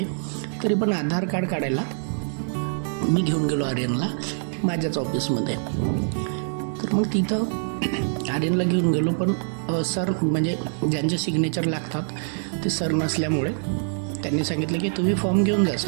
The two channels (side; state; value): left; silent; digital silence